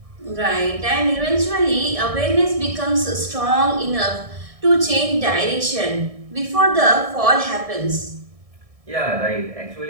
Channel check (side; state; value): left; late; 1.6 ms